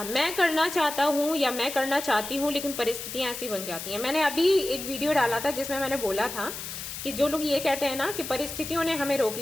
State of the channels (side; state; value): left; noise; hiss, 8 dB below the sound